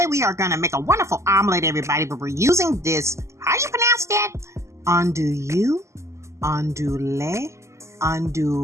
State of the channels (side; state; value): left; late; 0.14 ms